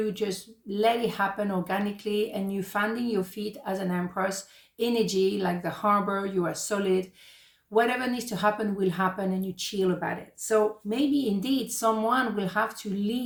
just let it happen organically, and you finding your feet as an Empress energy, like the harbor, you are solid. Whatever needs to happen will happen, and you chill about it. So maybe indeed someone will have to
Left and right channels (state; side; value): identical; both; correlation 1.00